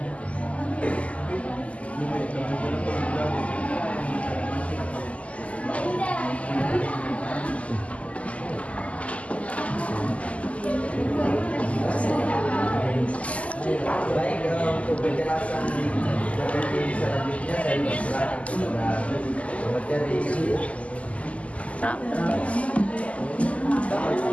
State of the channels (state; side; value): late; right; 0.066 ms